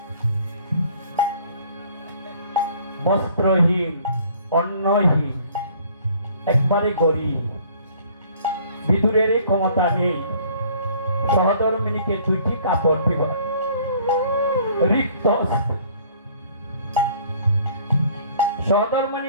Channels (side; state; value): both; inverted; correlation -0.56